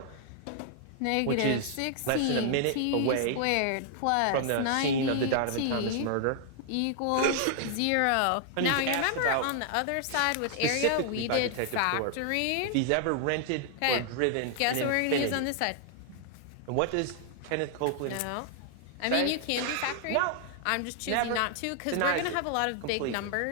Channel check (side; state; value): both; different; correlation 0.00